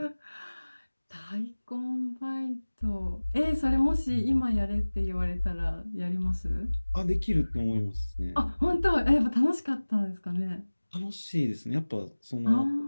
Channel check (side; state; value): both; inverted; correlation -1.00